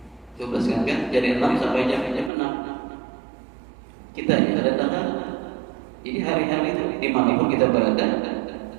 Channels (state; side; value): drops out; left; at 2.3 s